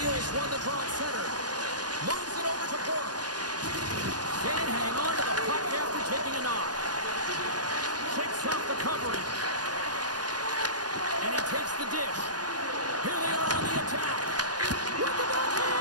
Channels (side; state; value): left; late; 0.69 ms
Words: won the draw at center. Moves it over to Bork. Can't hang on to the puck after taking a knock. Kicks off the coverage. And he takes the dish. Here they are on the attack. With the